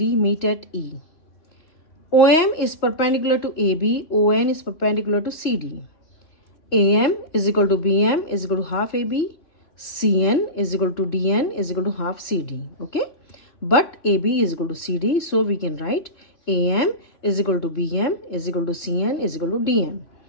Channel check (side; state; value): right; late; 3.0 ms